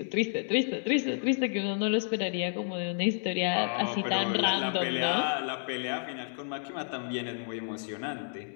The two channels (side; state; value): right; silent; digital silence